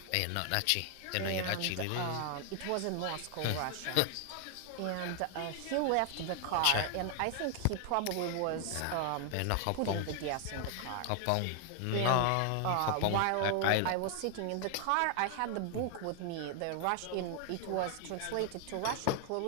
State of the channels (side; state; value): both; different; correlation 0.00